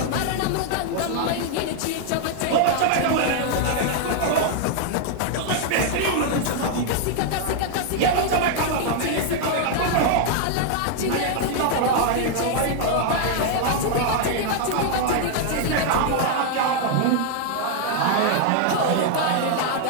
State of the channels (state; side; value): different; both; correlation 0.00